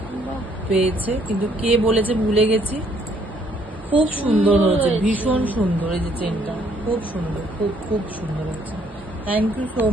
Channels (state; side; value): normal; both; correlation 0.66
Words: পেয়েছে, কিন্তু কে বলেছে ভুলে গেছি। খুব সুন্দর হয়েছে, ভীষণ সুন্দর, এই যে চেনটা খুব সুন্দর, খুব খুব সুন্দর হয়েছে, থ্যাংক ইউ সো